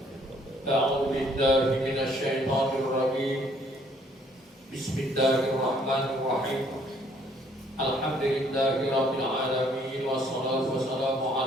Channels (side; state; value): both; normal; correlation 0.63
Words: A'udzu billahi minasy syaithanir rajim. Bismillahirrahmanirrahim. Alhamdulillahirabbil alamin wassalatu wassalamu